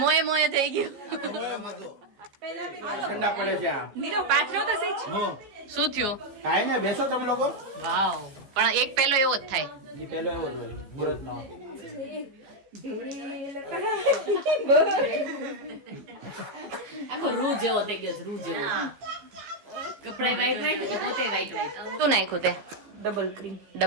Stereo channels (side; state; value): left; late; 15 ms